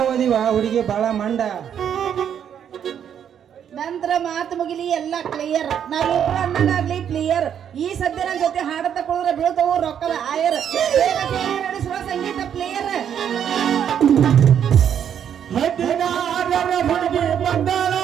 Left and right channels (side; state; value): left; quieter; 8.9 dB